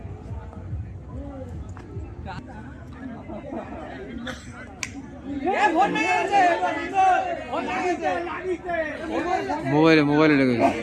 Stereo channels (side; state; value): both; identical; correlation 1.00